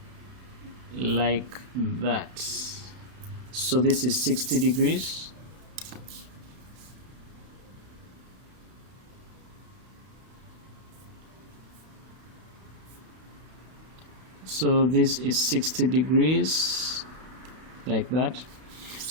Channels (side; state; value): left; late; 32 ms